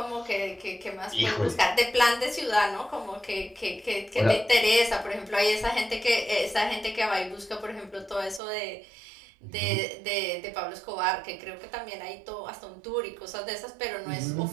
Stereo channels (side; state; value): left; drops out; at 8.4 s